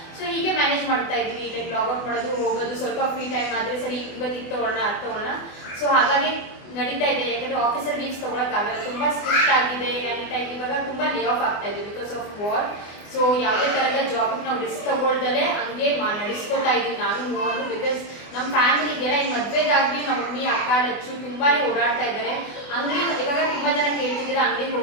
ಸೊ ಹೀಗೆ ಮ್ಯಾನೇಜ್ ಮಾಡ್ತಾ ಇದ್ವಿ, ಲೈಕ್ ಲಾಗ್ ಔಟ್ ಮಾಡೋದು, ಹೋಗೋದು, ಸ್ವಲ್ಪ ಫ್ರೀ ಟೈಮ್ ಆದರೆ ಸರಿ ಇವತ್ತು ಇದು ತೊಗೊಳ್ಳೋಣ ಅದು ತೊಗೊಳ್ಳೋಣ. ಸೊ ಹಾಗಾಗಿ ನಡೀತಾ ಇದೆ. ಯಾಕಂದರೆ ಆಫೀಸಲ್ಲಿ ಲೀವ್ಸ್ ತೊಗೊಳಕ್ಕಾಗಲ್ಲ, ತುಂಬ ಸ್ಟ್ರಿಕ್ಟ್ ಆಗಿದೆ. ಇವಾಗ ತುಂಬ ಲೇ ಆಫ್ ಆಗ್ತಾ ಇದೆ ಬಿಕಾಸ್ ಆಫ್ ವಾರ್. ಸೊ ಯಾವುದೇ ಥರದ ಜಾಬ್ಗೆ ನಾವು ರಿಸ್ಕ್ ತಗೊಳ್ದಲ್ಲೇ ಹಂಗೆ ನಡೆಸ್ಕೊತಾ ಇದ್ದೀವಿ ನಾನು ಮೂವರು. ಬಿಕಾಸ್ ನಮ್ಮ ಫ್ಯಾಮಿಲಿ ಇದೆಯಲ್ಲ, ಈ ಮದುವೆದಾಗಲಿ ನಮ್ಮ ಮಮ್ಮಿ ಅಕ್ಕ ಲಚ್ಚು ತುಂಬಾ ಓಡಾಡ್ತಾ ಇದ್ದಾರೆ. ಅಂಗಡಿ ಇವಾಗ ತುಂಬ ಜನ ಕೇಳ್ತಿದ್ದೀರ ಅಂಗಡಿಗೆ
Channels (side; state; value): right; late; 24 ms